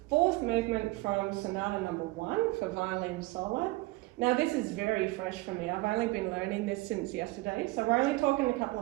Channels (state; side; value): quieter; left; 20.8 dB